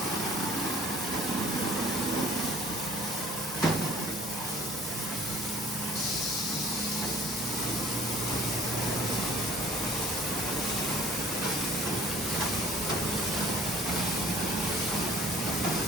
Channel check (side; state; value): both; normal; correlation 0.52